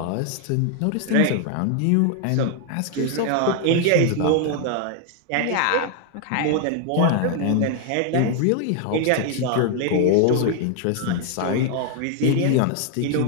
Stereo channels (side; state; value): both; different; correlation 0.01